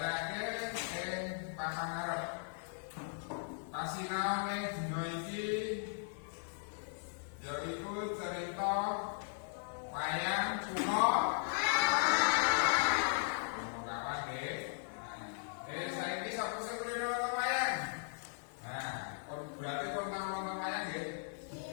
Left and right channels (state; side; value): silent; right; digital silence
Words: ing papan ngarep. Pasinaone dina iki yaiku cerita wayang Punokawan nggih. Saiki sapa sing kulino nonton wayang? Nah, berarti kon tau nonton wayang nggih?